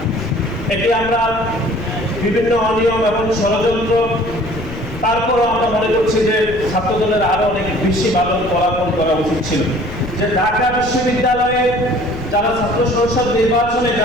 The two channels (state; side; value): noise; left; rumble, 12 dB below the sound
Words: এটি আমরা বিভিন্ন অনিয়ম এবং ষড়যন্ত্র, তারপরও আমরা মনে করছি যে ছাত্রদলের আরো অনেক বেশি ভালো ফলাফল করা উচিত ছিল। যে ঢাকা বিশ্ববিদ্যালয়ে যারা ছাত্র সংসদ নির্বাচনে